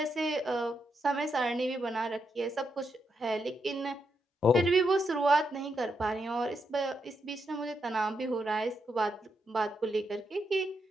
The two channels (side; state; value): both; normal; correlation 0.82